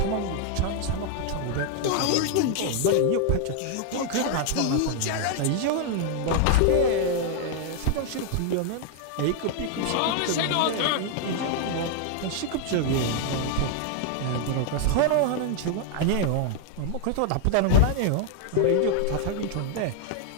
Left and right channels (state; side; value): different; both; correlation 0.00